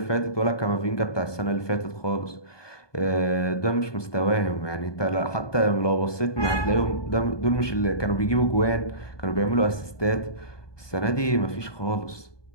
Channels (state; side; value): late; right; 1.2 ms